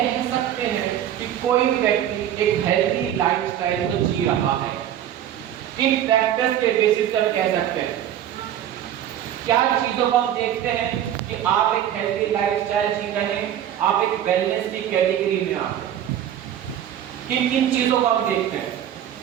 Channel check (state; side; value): quieter; left; 10.9 dB